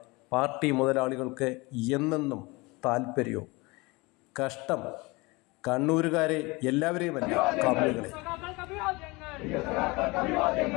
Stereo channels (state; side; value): quieter; right; 24.7 dB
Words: പാർട്ടി മുതലാളികൾക്ക് എന്നെന്നും താല്പര്യവും. കഷ്ടം കണ്ണൂരുകാരെ എല്ലാവരെയുമല്ല, കമ്മികളെ.